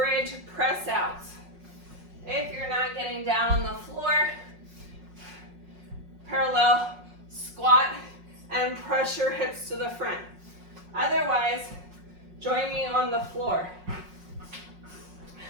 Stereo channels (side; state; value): left; late; 5.5 ms